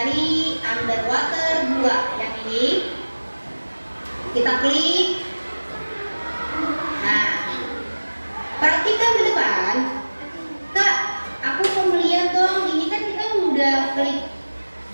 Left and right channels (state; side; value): inverted; both; correlation -1.00